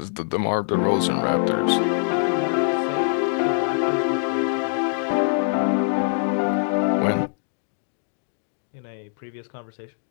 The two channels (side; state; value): right; silent; digital silence